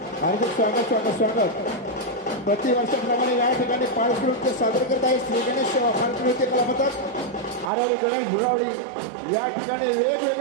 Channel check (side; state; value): left; drops out; at 7.7 s